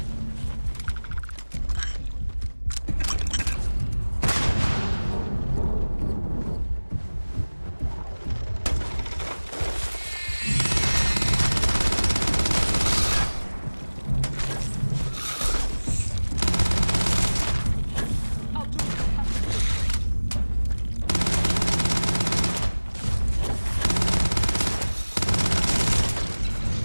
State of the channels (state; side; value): inverted; both; correlation -1.00